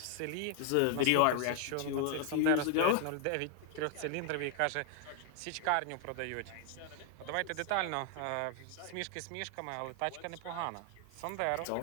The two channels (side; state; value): both; different; correlation 0.00